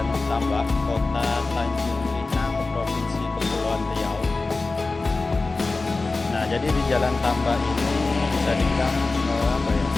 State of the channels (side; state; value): right; quieter; 3.6 dB